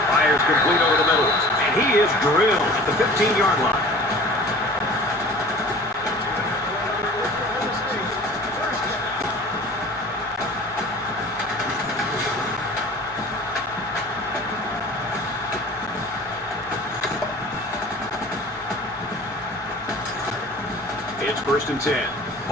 Fires complete over the middle, and he is drilled at the 15-yard line. It's 1st and 10.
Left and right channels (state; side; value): normal; both; correlation 0.44